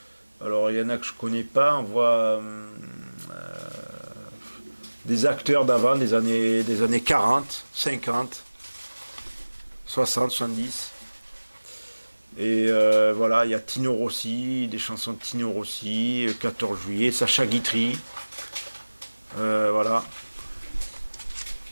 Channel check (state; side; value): inverted; both; correlation -1.00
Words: alors, il y en a que je connais pas. On voit... des acteurs d'avant, des années 40, 50, 60, 70. Et voilà, il y a Tino Rossi, des chansons de Tino Rossi, 14 juillet, Sacha Guitry. Voilà.